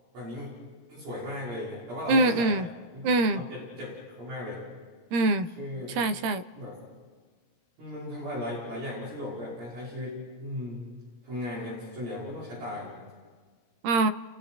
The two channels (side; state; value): left; late; 17 ms